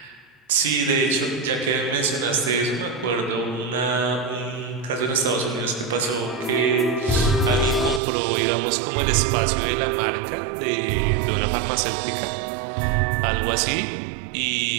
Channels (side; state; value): left; drops out; at 8.0 s